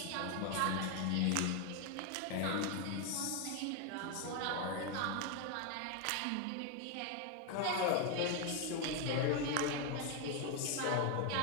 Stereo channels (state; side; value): different; both; correlation 0.01